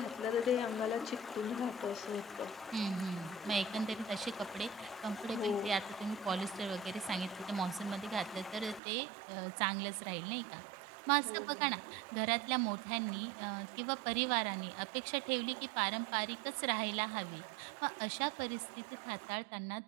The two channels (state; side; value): drops out; left; at 8.8 s